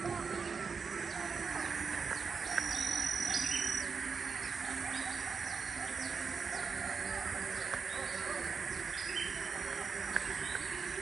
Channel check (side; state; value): left; quieter; 5.4 dB